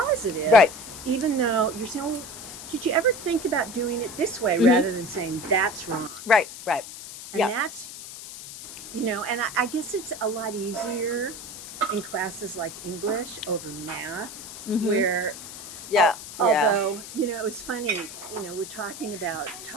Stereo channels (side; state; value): left; noise; hiss, 12 dB below the sound